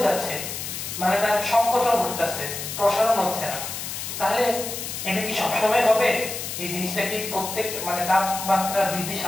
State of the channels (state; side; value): noise; left; hiss, 6 dB below the sound